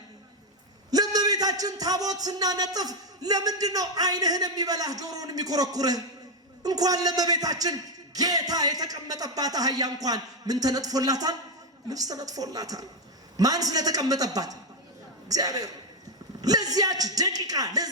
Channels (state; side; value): normal; both; correlation 0.05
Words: ለእመቤታችን ታቦት ስናነጥፍ ለምንድን ነው ዓይንህን የሚበላህ ጆሮውን የሚኮረኩርህ? እንኳን ለእመቤታችን ጌታ የተቀመጠባት አህያ እንኳን ምን ተነጥፎላታል? ልብስ ተነጥፎላታል። ማን ስለተቀመጠባት? እግዚአብሔር። ለዚያች ደቂቃ